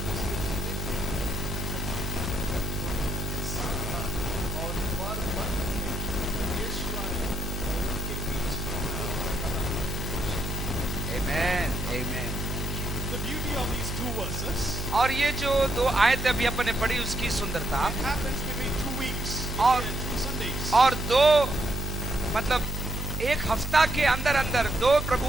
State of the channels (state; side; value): normal; both; correlation 0.77